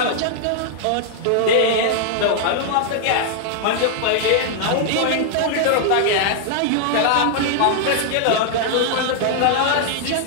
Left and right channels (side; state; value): both; different; correlation -0.01